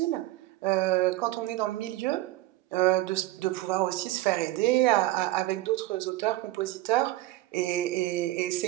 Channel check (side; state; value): left; quieter; 17.2 dB